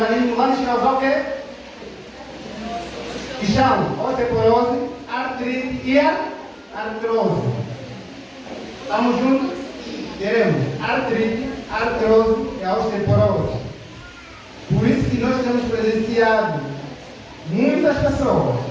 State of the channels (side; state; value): both; identical; correlation 1.00